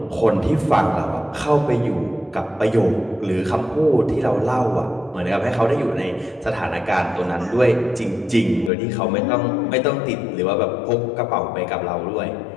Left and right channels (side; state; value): right; drops out; at 8.7 s